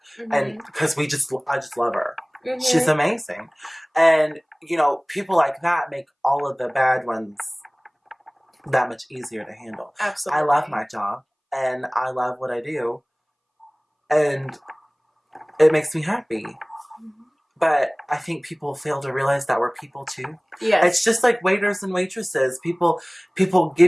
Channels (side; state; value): both; identical; correlation 1.00